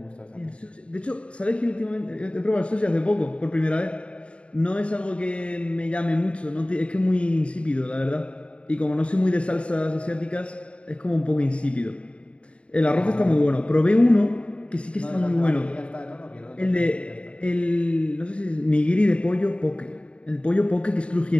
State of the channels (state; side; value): late; right; 0.060 ms